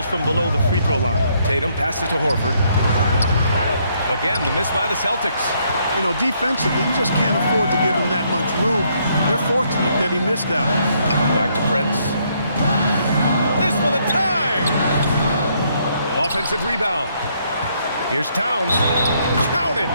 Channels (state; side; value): inverted; both; correlation -0.71